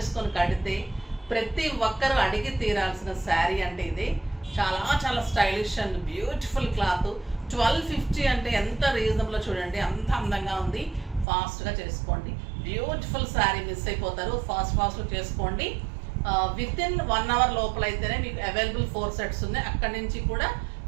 కడితే ప్రతి ఒక్కరు అడిగి తీరాల్సిన శారీ అంటే ఇది. చాలా చాలా స్టైలిష్ అండ్ బ్యూటిఫుల్ క్లాత్. 1250 అంటే ఎంత రీజనబుల్ చూడండి, అంత అందంగా ఉంది. ఫాస్ట్గా చేసుకోండి. బ్యూటిఫుల్ శారీ మిస్ అయిపోతారు. ఫాస్ట్గా చేసుకోండి. విత్ ఇన్ 1 అవర్ లోపల అయితేనే మీకు అవైలబుల్ 4 సెట్స్ ఉన్నాయి. అక్కడి నుంచి కూడా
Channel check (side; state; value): left; drops out; at 11.2 s